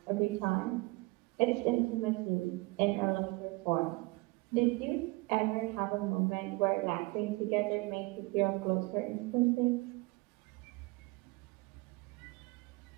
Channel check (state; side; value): quieter; left; 24.5 dB